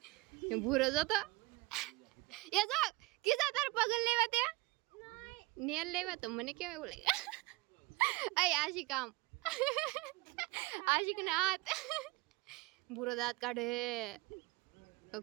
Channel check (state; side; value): quieter; left; 23.4 dB